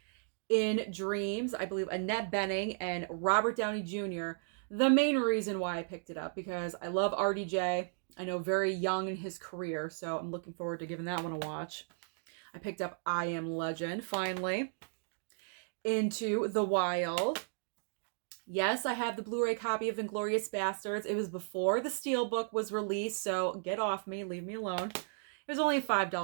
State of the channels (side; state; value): left; silent; digital silence